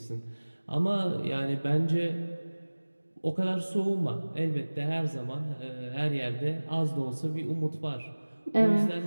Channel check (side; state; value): both; inverted; correlation -1.00